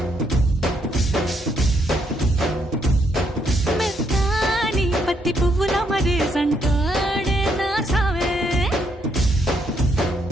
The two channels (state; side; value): normal; both; correlation 0.74